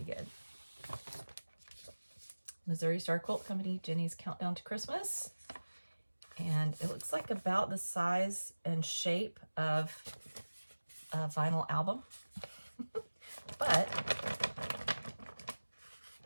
good. Missouri Star Quilt Company, Jenny's Countdown to Christmas. And it looks like about the size and shape of a vinyl album. But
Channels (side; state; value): both; inverted; correlation -1.00